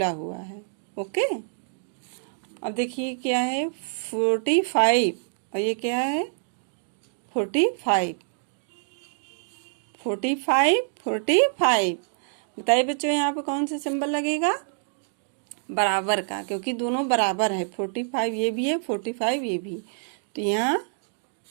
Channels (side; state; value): left; silent; digital silence